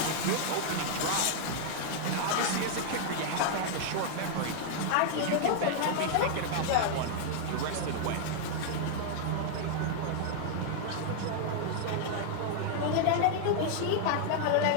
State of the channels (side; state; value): both; different; correlation 0.00